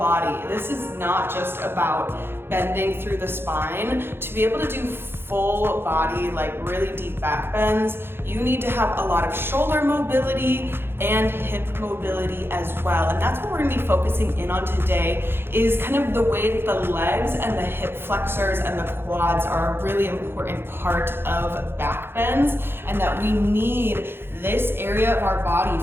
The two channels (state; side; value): late; left; 0.11 ms